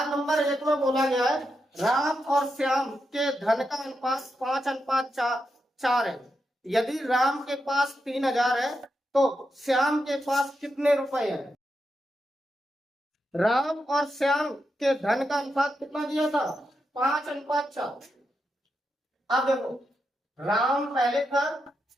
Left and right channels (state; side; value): normal; both; correlation 0.86